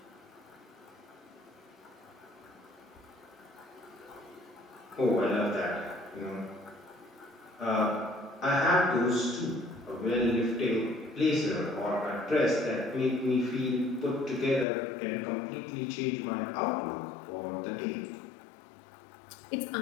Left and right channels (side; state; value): right; drops out; at 14.7 s